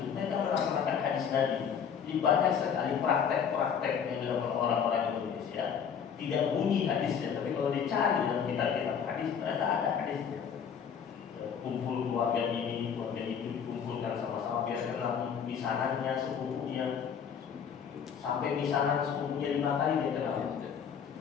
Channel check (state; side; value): quieter; right; 7.4 dB